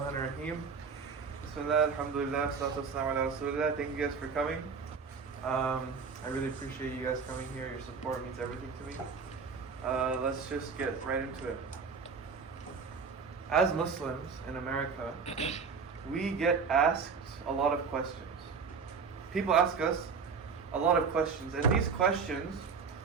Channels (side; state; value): left; quieter; 5.4 dB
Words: ar-Rahim. Bismillah, alhamdulillah, salatu wassalamu ala rasulillah. Thank you guys for coming. I really appreciate you guys coming here. Your support means everything to me. Let's just get right into it. As Muslims in America, we get asked a lot of questions. People ask us a lot of questions, and these questions